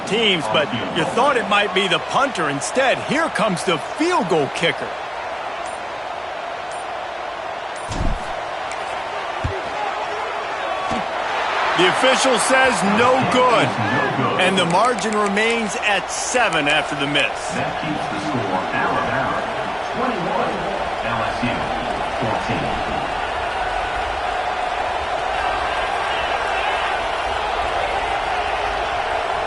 teams, but you thought it might be the punter. Instead, here comes the field goal kicker. The official says no good, and the margin remains at 7 after the miss. That keeps the score Alabama 21, LSU 14.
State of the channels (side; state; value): both; identical; correlation 1.00